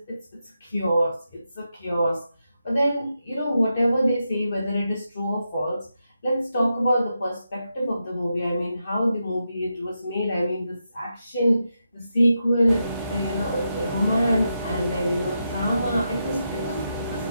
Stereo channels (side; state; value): both; inverted; correlation -0.85